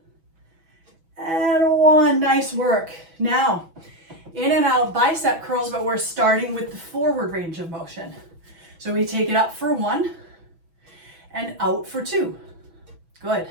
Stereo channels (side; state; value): left; late; 6.1 ms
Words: And 1. Nice work. Now, in and out bicep curls, but we're starting with the forward range of motion. So we take it up for 1 and out for 2. Good.